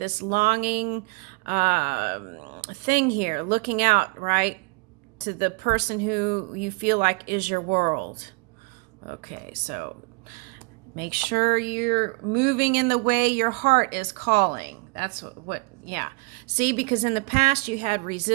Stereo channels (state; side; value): quieter; left; 28.3 dB